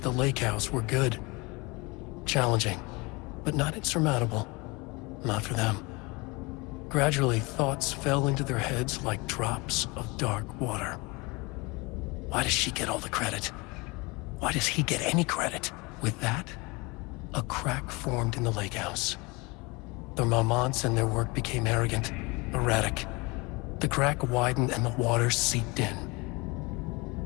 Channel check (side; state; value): right; quieter; 26.2 dB